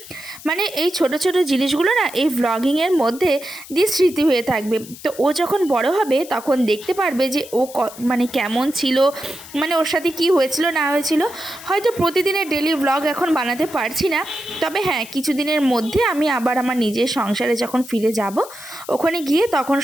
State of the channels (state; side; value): noise; left; hiss, 17 dB below the sound